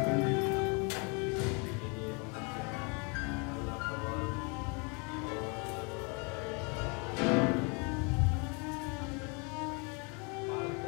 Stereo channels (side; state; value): right; quieter; 33.1 dB